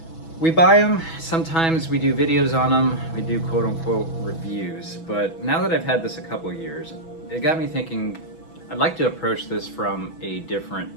We buy them, sometimes we do videos on them, we do quote-unquote reviews, but now that I've had this a couple of years, it got me thinking I'd like to approach this from a different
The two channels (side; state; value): right; late; 6.1 ms